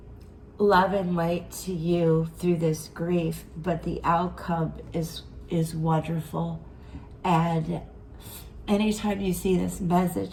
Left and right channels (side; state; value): both; identical; correlation 1.00